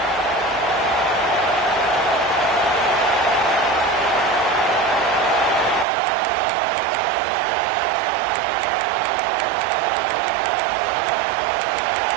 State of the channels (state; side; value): drops out; left; at 5.9 s